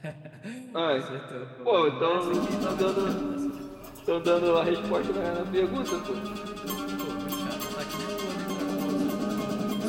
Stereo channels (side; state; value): both; identical; correlation 1.00